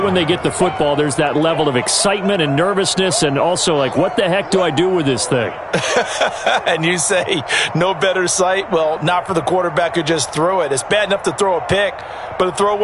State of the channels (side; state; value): both; identical; correlation 1.00